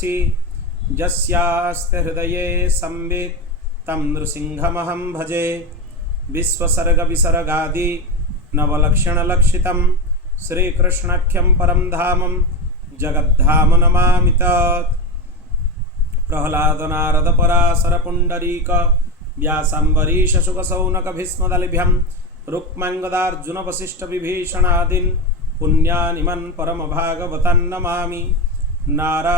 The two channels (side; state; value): both; normal; correlation 0.17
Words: यस्यास्ते हृदये संवित् तं नृसिंहमहं भजे। विश्वसर्गविसर्गादि नवलक्षणलक्षितं श्रीकृष्णाख्यं परं धामं जगद्धाम नमामि तत्। प्रह्लाद नारद पराशर पुंडरीक व्यासाम्बरीश शुकशौनक भीष्मदलिभ्यं रुक्माङ्गदार्जुन वसिष्ठ विभीषणादीन् पुण्यानिमन् परम भागवतान् नमामि।